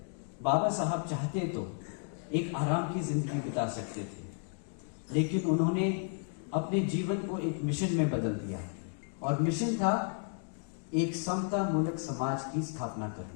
बाबा साहब चाहते तो एक आराम की जिंदगी बिता सकते थे, लेकिन उन्होंने अपने जीवन को एक मिशन में बदल दिया और मिशन था एक समता मूलक समाज की स्थापना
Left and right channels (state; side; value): silent; right; 56 dB below the other